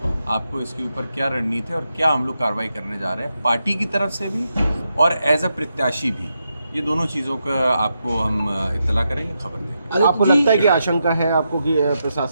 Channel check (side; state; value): both; inverted; correlation -0.85